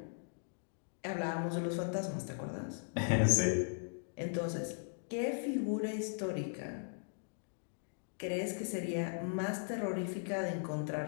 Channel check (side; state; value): right; silent; digital silence